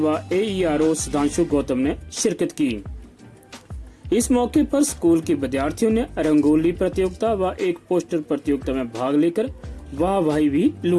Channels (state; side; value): identical; both; correlation 1.00